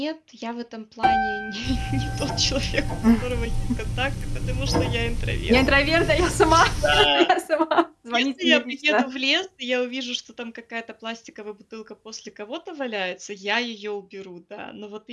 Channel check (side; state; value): both; identical; correlation 1.00